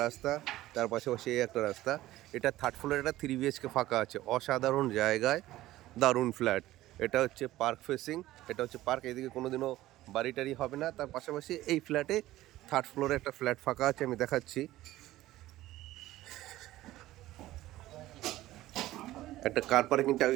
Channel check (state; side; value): quieter; left; 15.8 dB